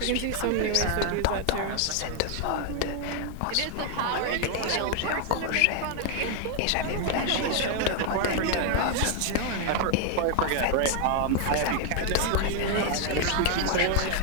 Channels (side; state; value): both; different; correlation 0.00